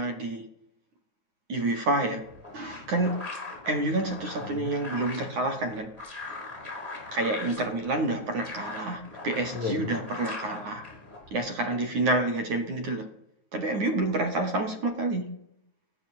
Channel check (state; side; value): late; left; 9.6 ms